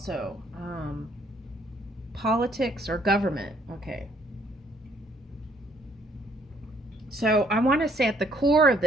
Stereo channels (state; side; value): normal; both; correlation 0.65